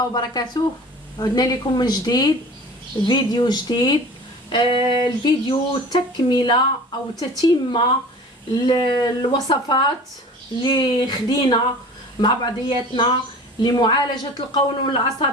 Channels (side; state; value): both; normal; correlation 0.41